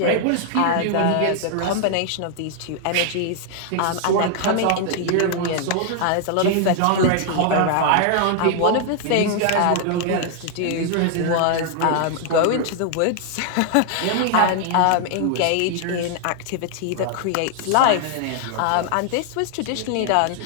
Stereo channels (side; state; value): both; different; correlation 0.00